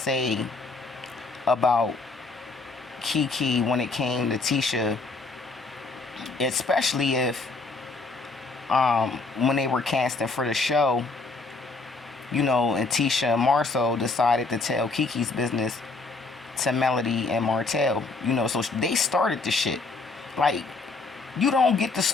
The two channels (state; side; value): quieter; right; 3.7 dB